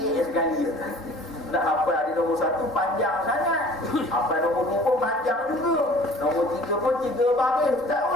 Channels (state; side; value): normal; both; correlation 0.48